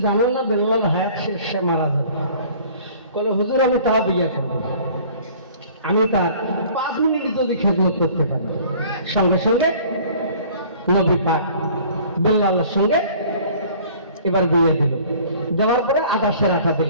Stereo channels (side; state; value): both; inverted; correlation -0.50